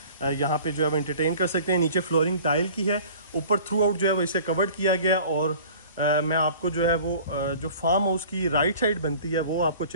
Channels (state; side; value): inverted; both; correlation -0.46